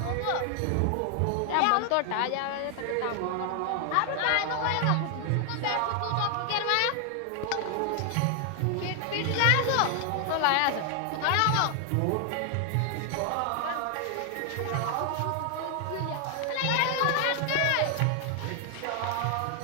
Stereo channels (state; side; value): different; both; correlation 0.00